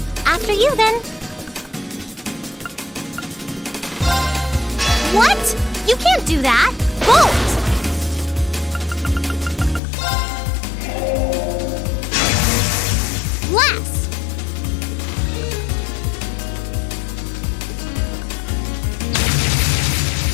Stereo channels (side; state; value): right; drops out; at 9.8 s